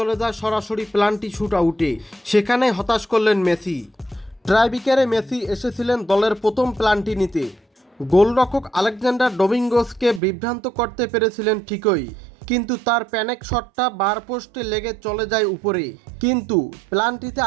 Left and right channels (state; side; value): drops out; left; at 10.2 s